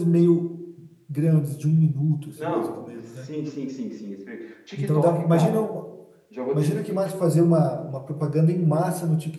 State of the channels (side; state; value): both; identical; correlation 1.00